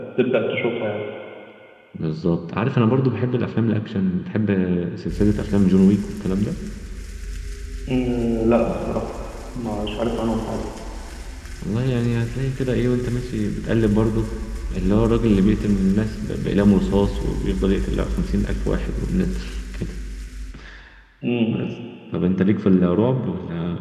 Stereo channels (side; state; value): both; identical; correlation 1.00